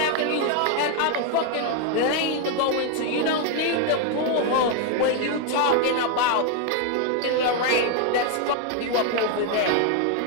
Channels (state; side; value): different; both; correlation 0.01